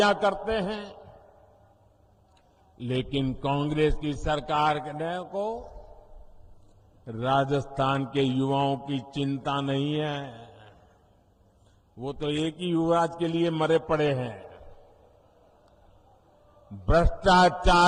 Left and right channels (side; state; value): both; identical; correlation 1.00